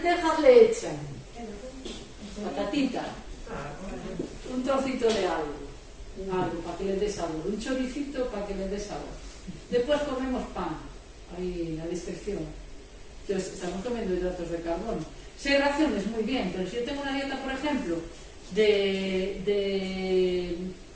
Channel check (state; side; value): identical; both; correlation 1.00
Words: le echan patatita, un trocito de algo para que le des sabor, un choricito para que le des sabor. Después comemos pan, ahí en la descripción. Entonces, estamos comiendo hidratos de carbono. 6 raciones, muy bien, pero si yo tengo una dieta, por ejemplo, de